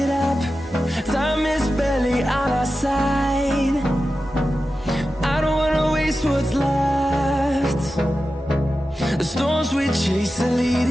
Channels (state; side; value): normal; both; correlation 0.93